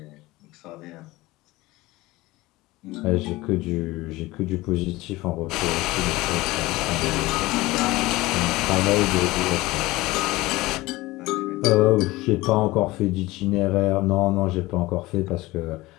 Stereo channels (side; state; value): right; quieter; 19.8 dB